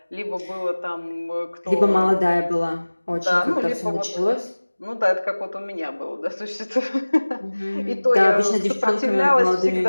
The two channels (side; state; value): both; inverted; correlation -1.00